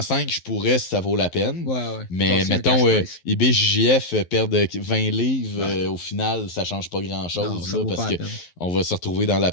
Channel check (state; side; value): late; right; 11 ms